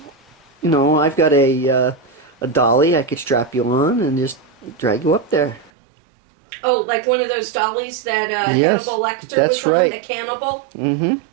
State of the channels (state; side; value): drops out; left; at 5.7 s